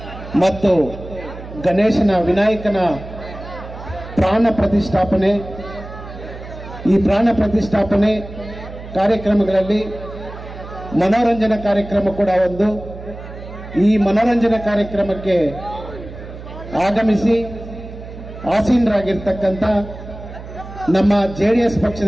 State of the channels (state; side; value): noise; right; hum, 13 dB below the sound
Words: ಮತ್ತು ಗಣೇಶನ ವಿನಾಯಕನ ಪ್ರಾಣ ಪ್ರತಿಷ್ಠಾಪನೆ, ಈ ಪ್ರಾಣ ಪ್ರತಿಷ್ಠಾಪನೆ ಕಾರ್ಯಕ್ರಮಗಳಲ್ಲಿ ಮನೋರಂಜನಾ ಕಾರ್ಯಕ್ರಮ ಕೂಡ ಒಂದು. ಈ ಮನೋರಂಜನಾ ಕಾರ್ಯಕ್ರಮಕ್ಕೆ ಆಗಮಿಸಿ ಆಸೀನರಾಗಿರ್ತಕ್ಕಂಥ ನಮ್ಮ JDS